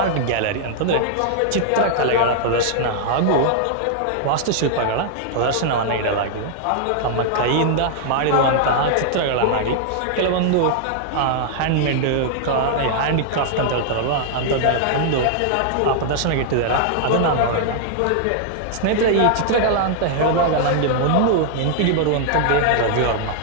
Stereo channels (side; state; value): both; different; correlation -0.01